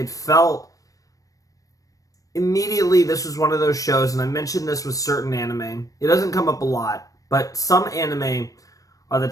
felt immediately this was one of those shows, and I mentioned this with certain anime. It doesn't come up a lot. But some anime are the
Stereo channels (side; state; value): right; late; 0.16 ms